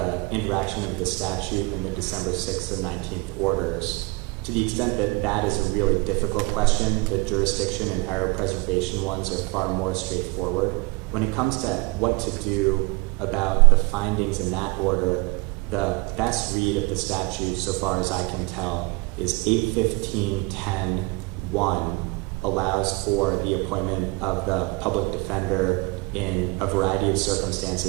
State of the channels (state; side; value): quieter; left; 25.5 dB